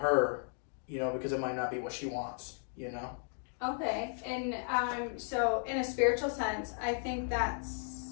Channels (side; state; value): right; silent; 54 dB below the other